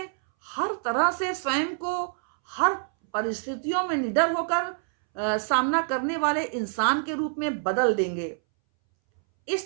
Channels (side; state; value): left; silent; 61 dB below the other